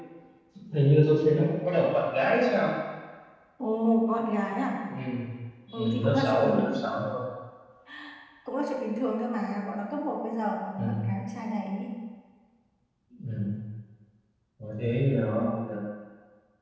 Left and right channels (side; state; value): both; identical; correlation 1.00